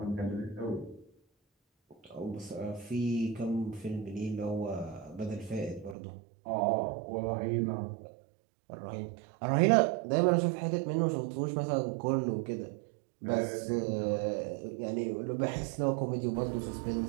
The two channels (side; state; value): left; drops out; at 6.0 s